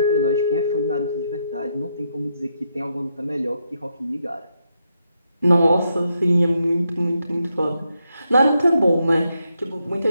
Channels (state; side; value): inverted; both; correlation -0.81